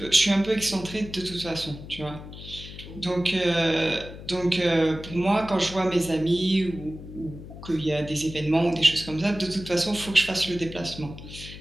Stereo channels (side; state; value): left; noise; hum, 13 dB below the sound